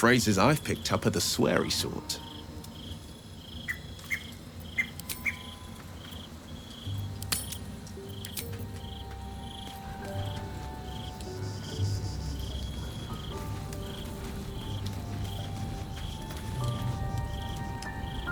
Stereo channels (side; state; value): both; identical; correlation 1.00